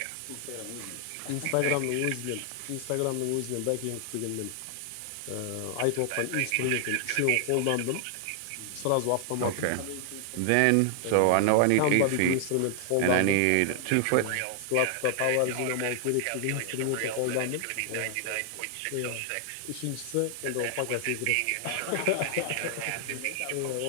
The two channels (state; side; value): different; both; correlation 0.00